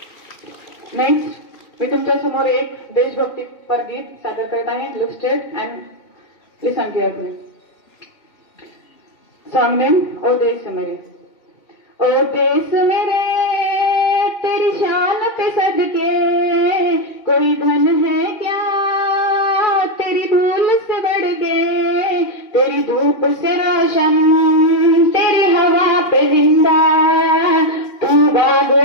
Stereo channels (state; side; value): late; right; 2.3 ms